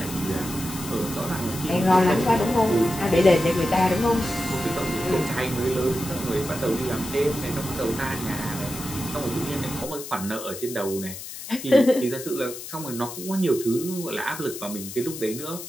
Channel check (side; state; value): left; noise; hiss, 10 dB below the sound